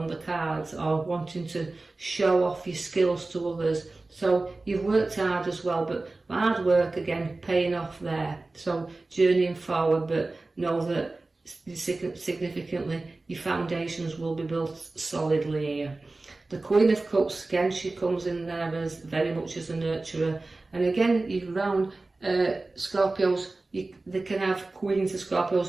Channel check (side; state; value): left; quieter; 3.2 dB